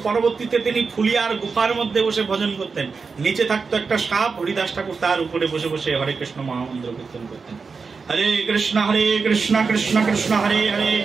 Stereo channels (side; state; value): left; quieter; 4.9 dB